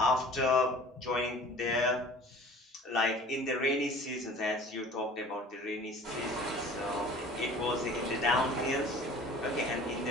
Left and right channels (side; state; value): both; normal; correlation 0.46